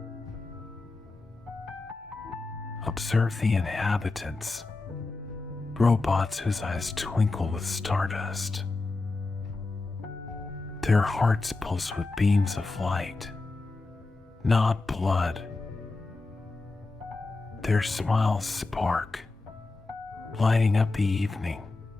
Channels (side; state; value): right; quieter; 3.5 dB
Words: Observe the inhabitants, robots whose eyes twinkle with stardust. Their hearts pulse with beams of light, not blood. Their smiles spark, lighting up the evening.